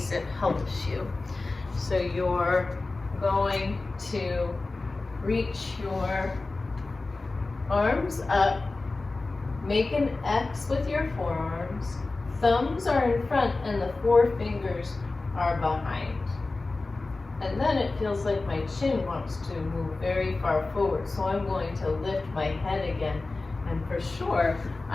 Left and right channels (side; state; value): right; quieter; 3.4 dB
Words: it helps you. So you're going to reach your arms up, make an X with your forearms, thumbs are in front and the four fingers are behind. And then it feels like my chin wants to move very far forward, so I'm going to lift my head again. And for sure,